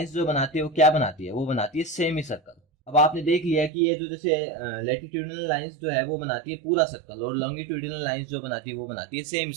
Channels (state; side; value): drops out; left; at 3.7 s